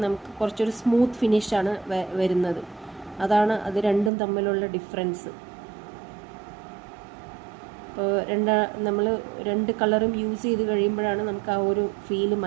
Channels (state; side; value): drops out; left; at 4.1 s